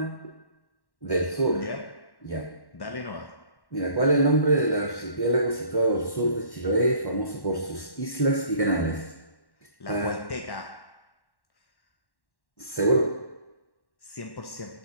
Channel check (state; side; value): late; right; 1.1 ms